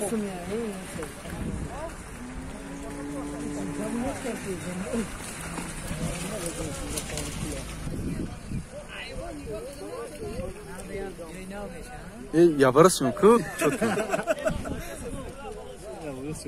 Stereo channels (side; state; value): both; identical; correlation 1.00